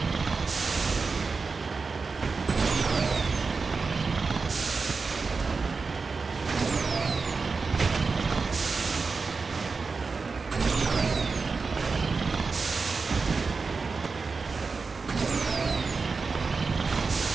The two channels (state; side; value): quieter; left; 4.5 dB